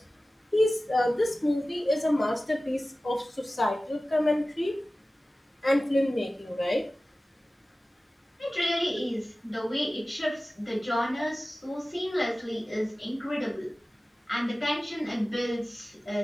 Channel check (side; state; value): both; normal; correlation 0.96